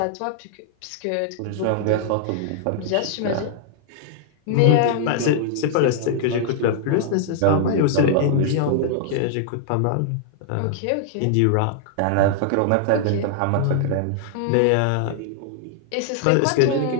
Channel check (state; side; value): different; both; correlation -0.01